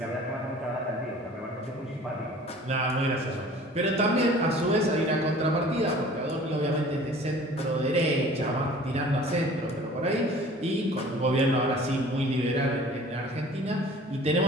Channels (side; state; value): both; normal; correlation 0.47